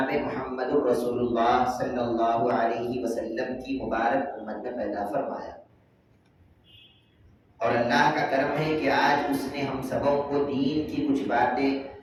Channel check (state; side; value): identical; both; correlation 1.00